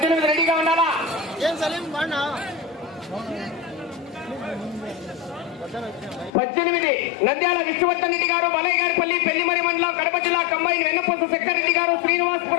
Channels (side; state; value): right; drops out; at 6.3 s